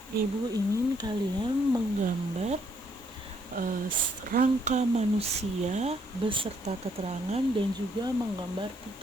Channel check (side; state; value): both; normal; correlation 0.70